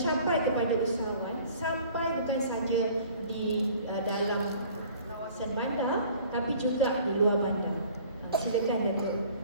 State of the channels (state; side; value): inverted; both; correlation -0.50